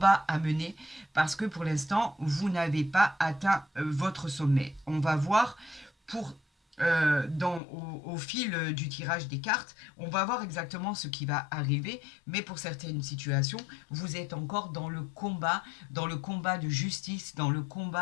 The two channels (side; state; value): right; drops out; at 7.6 s